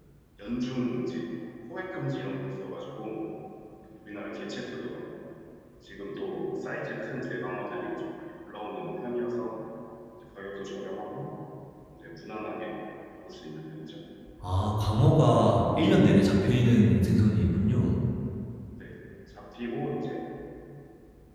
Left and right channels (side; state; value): both; identical; correlation 1.00